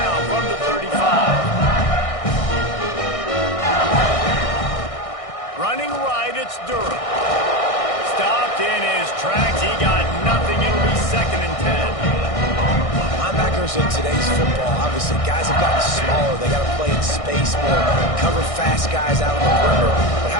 from the 35. Running right, it's Durham. Stopped in his tracks. He got nothing. It'll be 2nd and 10. Linebackers in today's football, obviously, guys have gotten smaller. They got to play in space more, cover fast guys out on the perimeter. But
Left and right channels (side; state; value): right; late; 1.6 ms